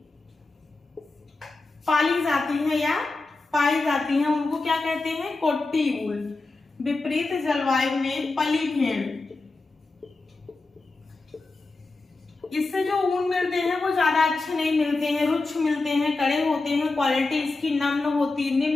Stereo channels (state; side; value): quieter; right; 3.5 dB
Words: पाली जाती है या पाई जाती हैं, उनको क्या कहते हैं, कोट्टी वूल। विपरीत जलवायु में पली भेड़, इससे जो ऊन मिलते हैं वो ज्यादा अच्छे नहीं मिलते हैं, रुक्ष मिलते हैं, कड़े होते हैं, क्वालिटी इसकी